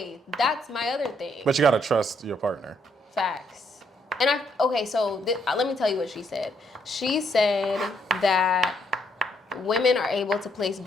that's my other thing. But you gotta trust your partner. Facts. And let me tell you what she said. She said that women are able to place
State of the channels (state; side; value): normal; both; correlation 0.72